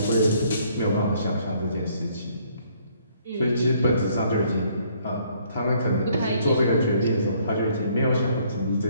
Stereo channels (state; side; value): inverted; both; correlation -0.64